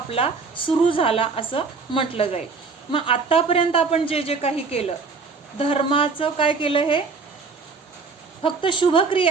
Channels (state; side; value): quieter; left; 4.6 dB